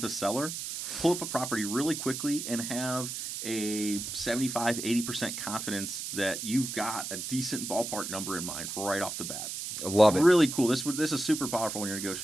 a seller, pull up a property really quickly and have a 75-80% confidence that you've got a decent ballpark number in mind right off the bat. I love it. Really cool. This is super powerful when you're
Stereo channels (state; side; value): noise; right; hiss, 6 dB below the sound